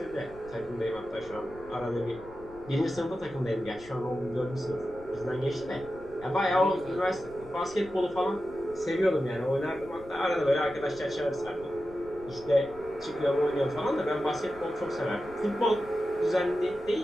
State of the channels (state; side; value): noise; left; rumble, 20 dB below the sound